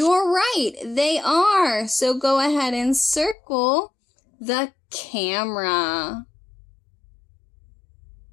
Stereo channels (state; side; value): drops out; right; at 3.4 s